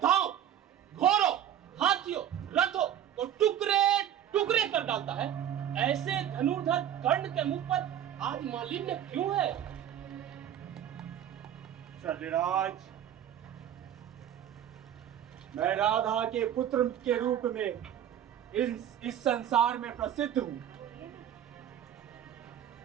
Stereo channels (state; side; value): quieter; left; 10.3 dB